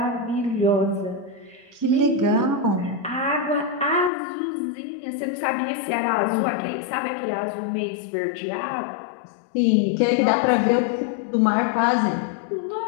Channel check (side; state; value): right; drops out; at 4.1 s